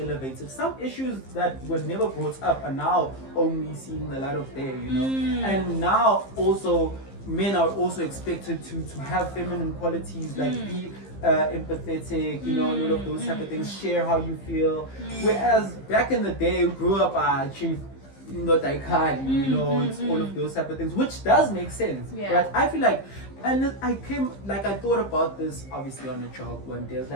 some issues that were never brought up are now only seeing the light of day, you know. And now also men are also expected to have feminine qualities, like be empathetic, you know, and all of those type of things, share how you feel. Whereas back in the day, we grew up chief, you know, it's all of those type of things, which does make sense, right? I feel like, and I thought about this obviously on a job one day. I was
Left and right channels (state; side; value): late; right; 15 ms